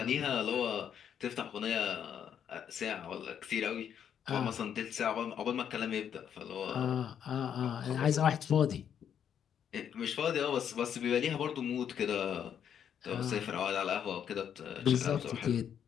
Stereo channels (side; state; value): right; quieter; 8.7 dB